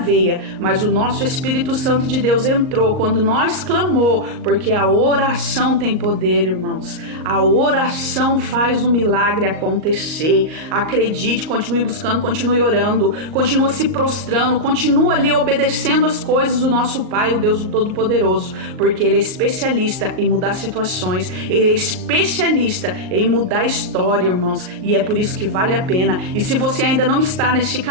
Mas o nosso Espírito Santo de Deus entrou quando nós clamou, porque a oração tem poder, irmãos. A oração faz o milagre acontecer. Acredite, continue buscando, continue orando, continue se prostrando, continue ali obedecendo as coisas do nosso Pai, o Deus Todo-Poderoso, porque Ele é especialista em mudar situações, Ele é especialista em mudar a história, irmãos, e é por isso que vale a pena. E se você ainda não está neste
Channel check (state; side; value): late; left; 38 ms